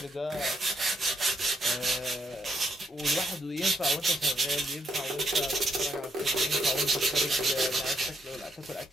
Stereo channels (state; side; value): normal; both; correlation 0.77